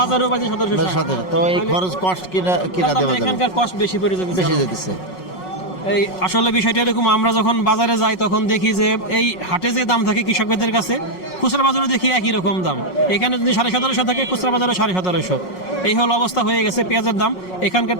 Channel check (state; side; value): late; right; 5.4 ms